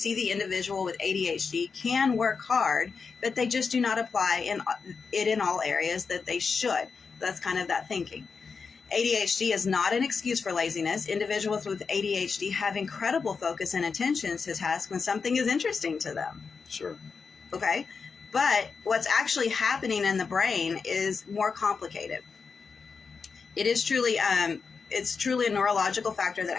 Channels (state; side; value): quieter; right; 5.2 dB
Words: the individual with ADHD can work hard, but they just do not apply in all areas that they should. That's kind of that thinking. ADHD is not an excuse for laziness. Individuals with ADHD have incredible focus and attention to task when something is interesting to them. Sure. Okay? But what's actually happening in the brain is more complicated. It is truly it's truly a neurological factor that